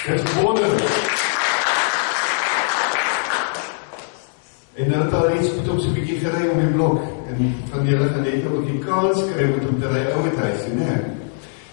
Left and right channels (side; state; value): right; silent; digital silence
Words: Dit is wonderlik. En dan het daar iets met hom so 'n bietjie gery om die blok, en van julle gaan net ook die kans kry met hom te ry ouer huis, nee.